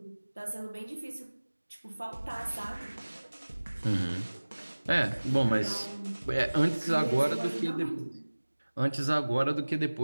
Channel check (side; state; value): both; inverted; correlation -1.00